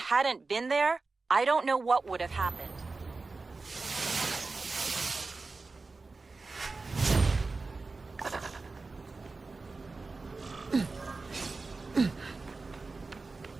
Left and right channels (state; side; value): quieter; left; 3.8 dB